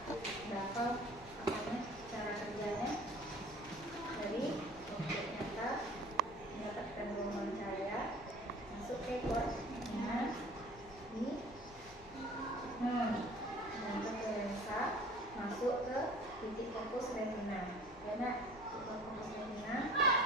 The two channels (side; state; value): both; normal; correlation 0.46